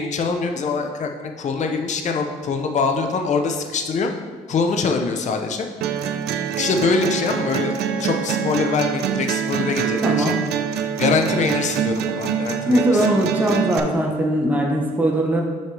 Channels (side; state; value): both; normal; correlation 0.52